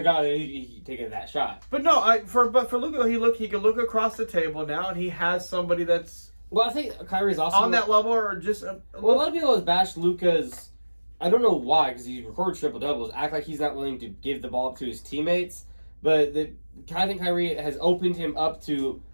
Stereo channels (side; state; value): both; inverted; correlation -1.00